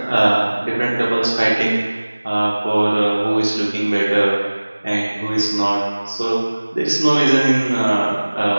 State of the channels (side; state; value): both; inverted; correlation -1.00